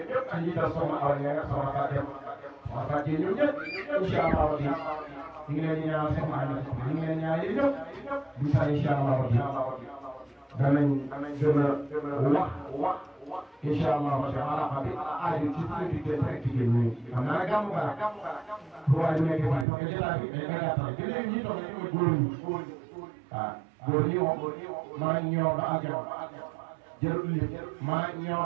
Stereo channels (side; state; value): left; drops out; at 19.7 s